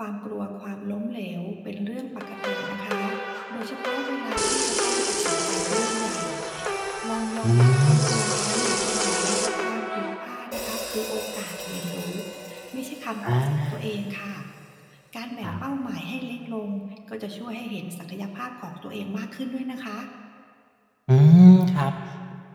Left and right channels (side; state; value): both; identical; correlation 1.00